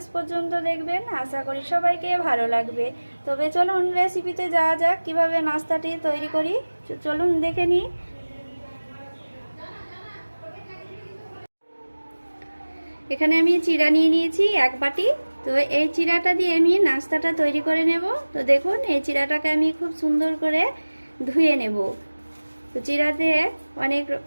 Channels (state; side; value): inverted; both; correlation -1.00